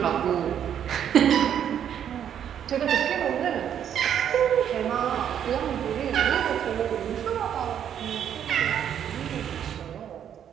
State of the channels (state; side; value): quieter; left; 9.3 dB